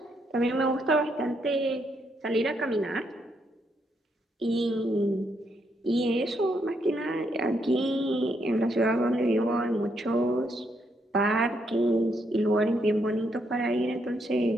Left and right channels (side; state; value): both; normal; correlation 0.76